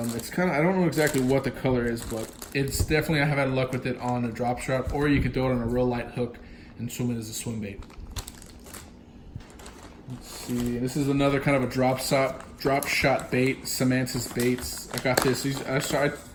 kind of, I don't know exactly what the color is, but it's definitely, I have had luck with it on a drop shot, or you could throw it on a real light hook and swim it as a swim bait. Let's see, this is another kind of a drop shot bait, Samantha's Baits. I got this. You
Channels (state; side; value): identical; both; correlation 1.00